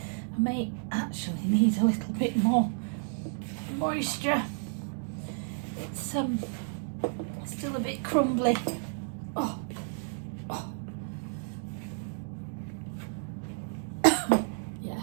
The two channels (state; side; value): silent; left; digital silence